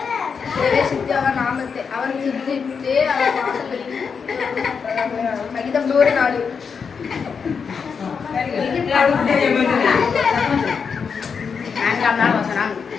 பிரவேசித்து அவன் நாமத்தை அவன் சித்தித்து அவன் வாசல்களில் சகிதம் 100 நாள். நான்காம் நாள் வசனம்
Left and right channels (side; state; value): right; quieter; 6.0 dB